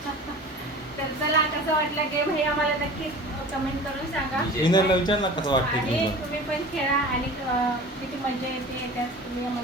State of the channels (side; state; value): both; normal; correlation 0.39